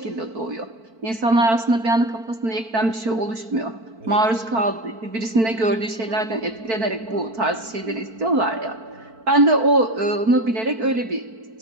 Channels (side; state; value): left; late; 4.5 ms